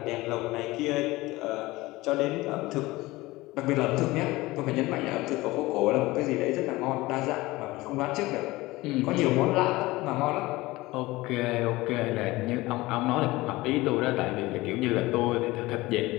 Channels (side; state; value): right; quieter; 19.9 dB